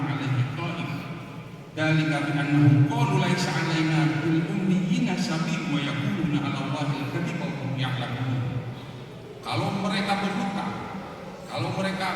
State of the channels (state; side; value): identical; both; correlation 1.00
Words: alaihi qa'im. Dzalika bi annahum qalu laisa 'alaina bil ummiyina sabil wa yaquluna 'ala Allahi al-kadhiba wa hum ya'lamun. Kalau mereka berhutang, kalau mereka